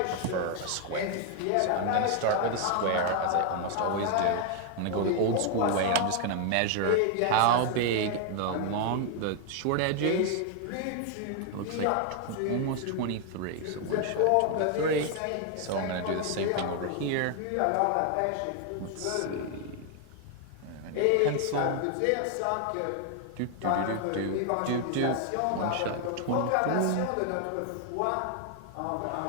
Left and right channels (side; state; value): both; different; correlation 0.00